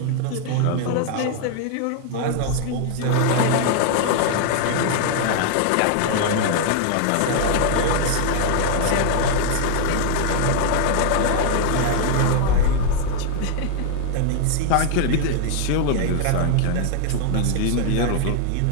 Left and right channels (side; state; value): both; different; correlation 0.00